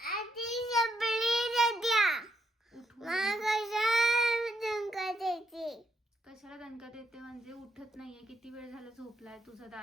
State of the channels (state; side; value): normal; both; correlation 0.77